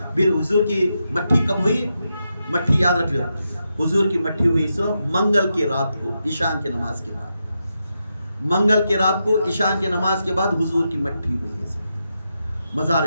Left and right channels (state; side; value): inverted; both; correlation -0.86